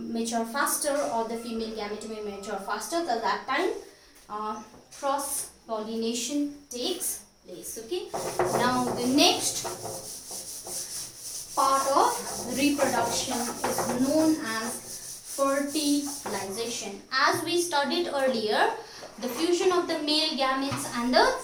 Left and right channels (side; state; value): both; identical; correlation 1.00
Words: faster or the female gamete may mature faster. So that time cross pollination takes place. Okay, now the next part of reproduction is known as fertilization. As we studied earlier, the fusion of the male gametes and the